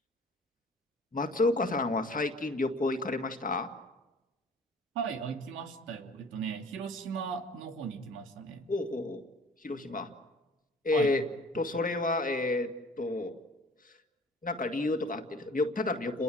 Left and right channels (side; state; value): both; normal; correlation 0.49